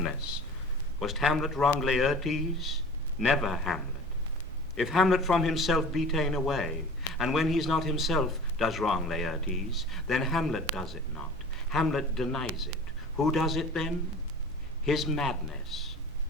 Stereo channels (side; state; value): both; normal; correlation 0.41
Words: Was Hamlet wrong Laertes? Never Hamlet. If Hamlet from himself be ta'en away, and when he's not himself does wrong Laertes, then Hamlet does it not. Hamlet denies it. Who does it then? His madness.